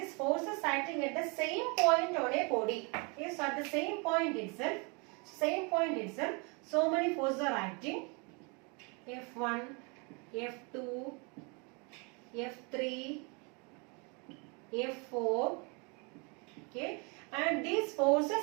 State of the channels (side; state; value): left; quieter; 32.3 dB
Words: forces acting at the same point on a body. Okay, so at the same point itself, so many forces are acting. F1, F2, F3, F4. Okay, and these